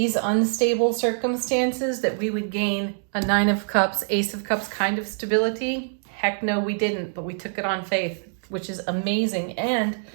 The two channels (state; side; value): silent; left; digital silence